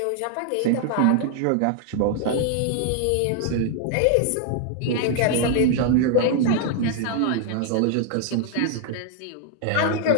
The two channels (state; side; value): different; both; correlation 0.00